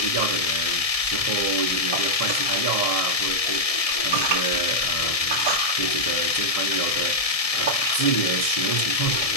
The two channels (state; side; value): late; right; 1.6 ms